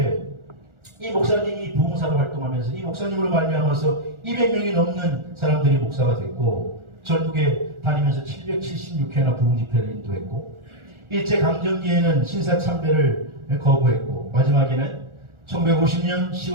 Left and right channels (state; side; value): late; left; 1.4 ms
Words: 이 목사님이 부흥사로 활동하면서 이 목사님으로 말미암아서 200명이 넘는 사람들이 목사가 됐고 전국에 다니면서 776회나 부흥 집회를 인도했고 일제강점기에는 신사참배를 거부했고 마지막에는 1950년